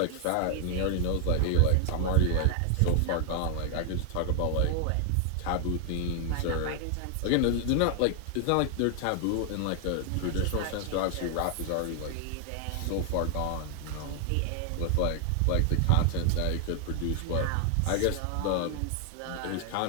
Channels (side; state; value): both; different; correlation 0.00